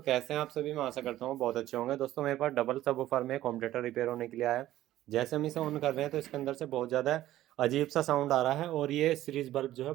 कैसे हैं आप सभी? मैं आशा करता हूँ बहुत अच्छे होंगे। दोस्तों मेरे पास डबल सबवूफर में कॉम्पिटेटर रिपेयर होने के लिए आया है। जैसे हम इसे ऑन कर रहे हैं तो इसके अंदर से बहुत ज़्यादा अजीब सा साउंड आ रहा है और ये सीरीज बल्ब जो है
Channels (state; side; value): quieter; left; 14.2 dB